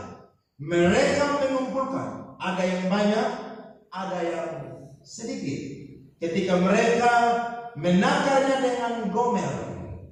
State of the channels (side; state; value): both; identical; correlation 1.00